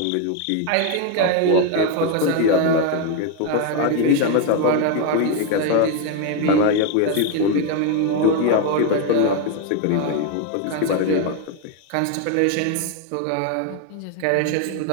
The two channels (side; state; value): both; different; correlation 0.01